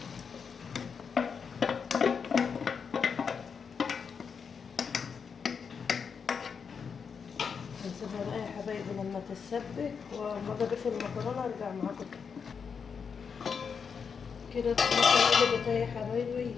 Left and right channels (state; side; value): quieter; right; 6.2 dB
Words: هنسيبها بقى يا حبايبي لما تتسبك، وما اضيف المكرونه ارجع معاكم تاني. كده الطماطم قلبت اهي يا حبايبي.